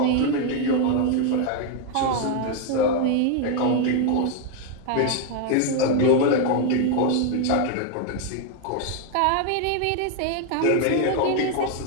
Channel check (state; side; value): different; both; correlation 0.01